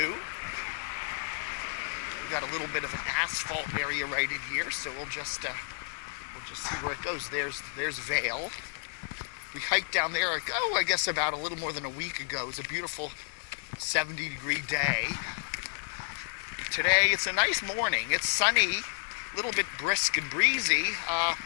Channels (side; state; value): right; silent; digital silence